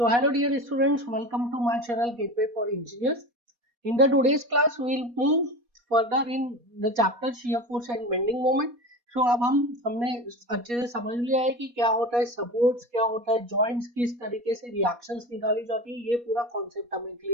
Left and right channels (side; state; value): left; late; 4.2 ms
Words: So hello dear students, welcome to my channel Gateway for Engineers. In the today's class we will move further in the chapter shear force and bending moment. So अब हमने अच्छे से समझ लिया है कि क्या होता है सपोर्ट्स, क्या होता है जॉइंट्स, किस तरीके से रिएक्शंस निकाली जाती है, ये पूरा कॉन्सेप्ट हमें